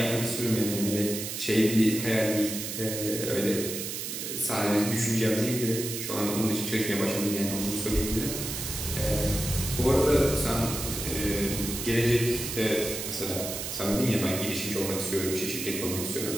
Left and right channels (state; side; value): noise; right; hiss, 5 dB below the sound